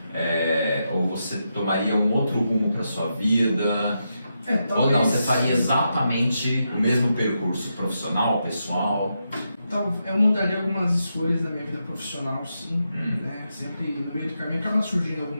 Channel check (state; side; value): inverted; both; correlation -0.85